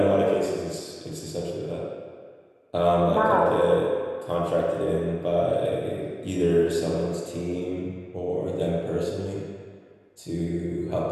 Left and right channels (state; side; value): identical; both; correlation 1.00